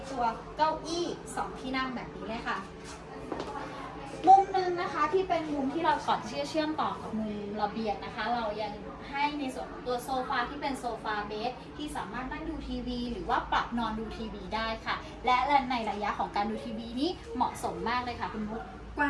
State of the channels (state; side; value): identical; both; correlation 1.00